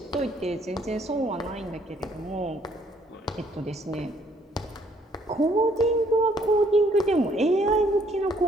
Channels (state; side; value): normal; both; correlation 0.65